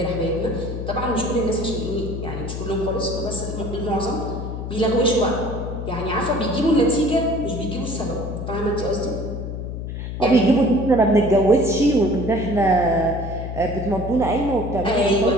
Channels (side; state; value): left; noise; hum, 6 dB below the sound